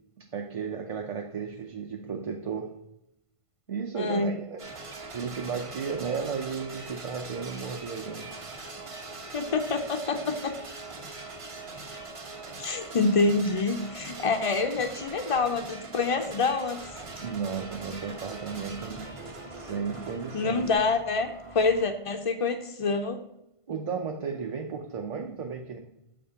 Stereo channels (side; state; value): right; late; 1.5 ms